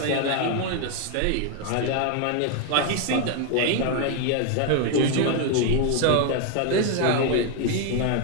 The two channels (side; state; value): both; different; correlation 0.01